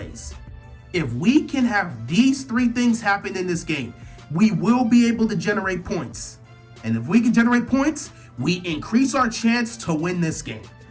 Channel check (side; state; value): both; identical; correlation 1.00